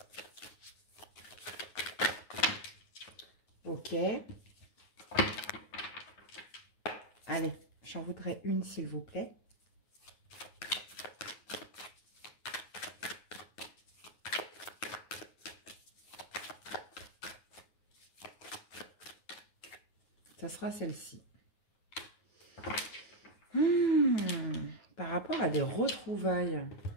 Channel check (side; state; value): right; late; 9.5 ms